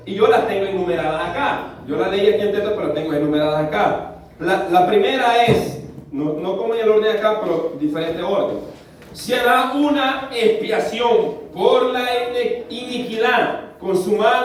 y yo las tengo enumeradas acá. Yo las leí aquí en texto, pero las tengo enumeradas acá. La primera es, no como en el orden acá, pero diferente orden. Será una expiación por la iniquidad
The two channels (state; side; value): identical; both; correlation 1.00